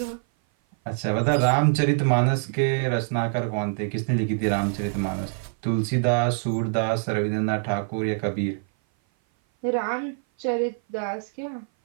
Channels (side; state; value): left; silent; 57 dB below the other